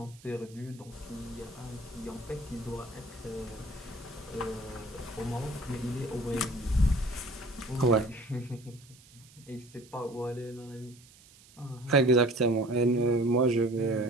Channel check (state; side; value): noise; right; hiss, 24 dB below the sound